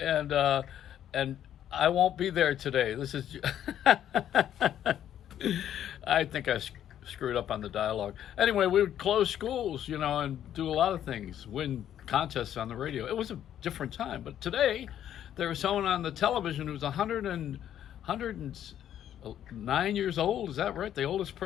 I won't be there today. This is." I think I screwed up on the dialogue. Anyway, we would close schools, and do a lot of things, win contests on the radio. It was a different time. But today, there was someone on the television who was 109 years old. Is that right? The oldest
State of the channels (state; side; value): quieter; right; 10.6 dB